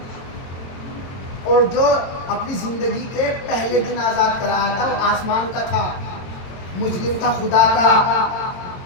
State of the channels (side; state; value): right; late; 22 ms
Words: اور جو اپنی زندگی کے پہلے دن آزاد کرایا تھا وہ آسمان کا تھا، مجرم تھا خدا کا۔